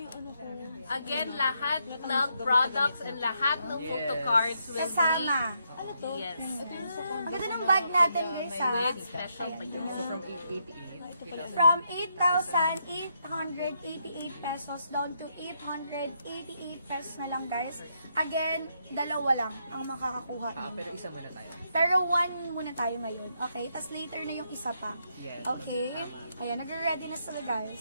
ano ko. Again, lahat ng products and lahat ng photo cards will Kasama. Ano to? be, yes, Ang ganda ng bag natin guys ha. with special pa yun. So from 888. From 8,888 pesos down to 888 pesos na lang guys. Again, dalawa lang ang makakakuha. Pero isa muna tayo. Pero one muna tayo ngayon. Okay? Tapos later na yung isa pa. Yes. Okay? Ayan, nagre-ready na sila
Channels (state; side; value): inverted; both; correlation -0.78